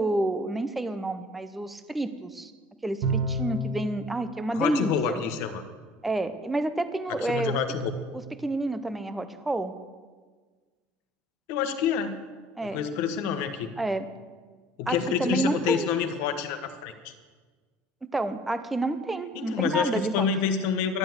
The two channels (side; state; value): both; normal; correlation 0.51